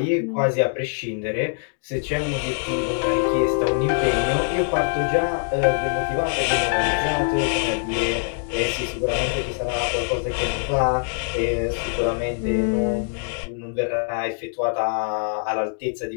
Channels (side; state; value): right; silent; digital silence